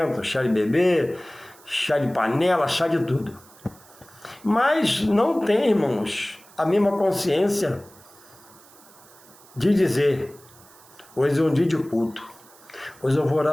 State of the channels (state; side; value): noise; right; hiss, 25 dB below the sound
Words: chá de bebê, chá de panela, chá de tudo. Mas não tem, irmãos, a mesma consciência de dizer, hoje é um dia de culto, hoje eu vou